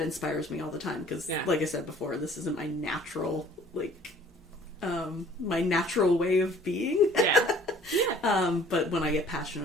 inspires me all the time. Because, like I said before, this isn't my natural, my natural way of being. Yeah. But when I get passionate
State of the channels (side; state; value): both; normal; correlation 0.54